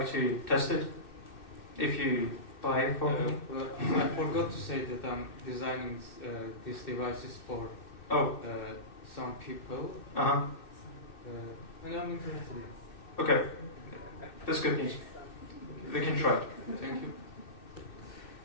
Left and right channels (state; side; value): late; right; 2.6 ms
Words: to test it. If you buy it for me. Well, I forgot to say that I'm designing these devices for some people. Uh-huh. And I'm interested in it. Okay. That's good news. We can try it. Thank you.